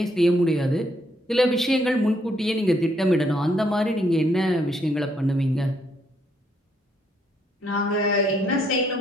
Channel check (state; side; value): normal; both; correlation 0.72